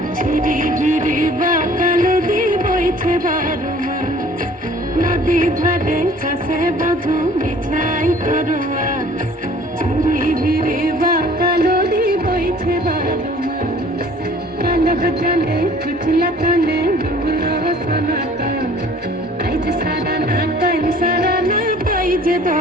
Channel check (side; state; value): both; normal; correlation 0.52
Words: झिरी झिरी बाकाल दी বইছে বারো মাস नदी धारे चासे बधू मिठाई करवा झिरी झिरी बाकाल दी বইছে বারো মাস কালো জলে কুচলা কালে ডুবলো সনাতন আজ সারা না কাল সারা না পাইছে